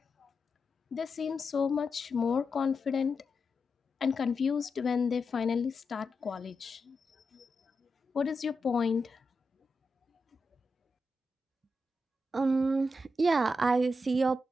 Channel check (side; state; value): both; normal; correlation 0.87